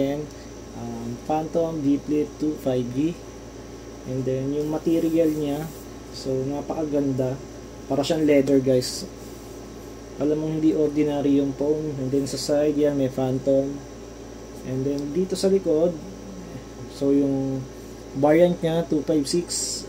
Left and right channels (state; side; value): identical; both; correlation 1.00